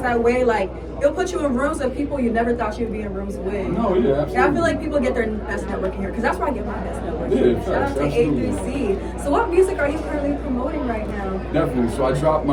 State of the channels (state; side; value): identical; both; correlation 1.00